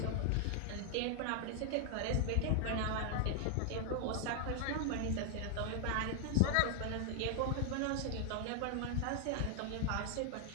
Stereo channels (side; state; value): both; different; correlation 0.00